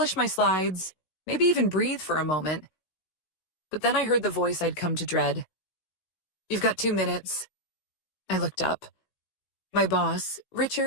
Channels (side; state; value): right; late; 16 ms